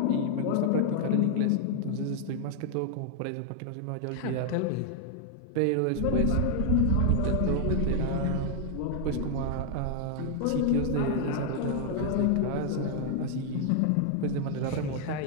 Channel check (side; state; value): both; different; correlation 0.00